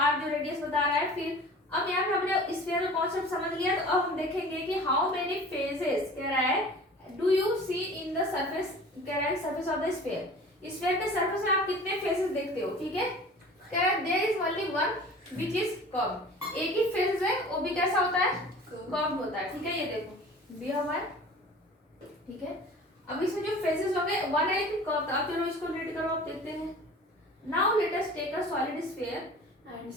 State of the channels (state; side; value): normal; both; correlation 0.42